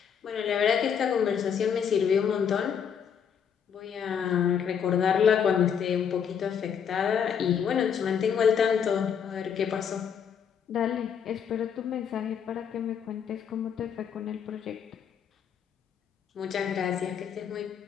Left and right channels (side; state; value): right; quieter; 7.6 dB